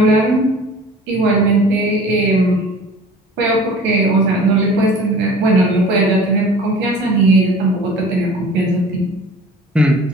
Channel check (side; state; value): both; normal; correlation 0.45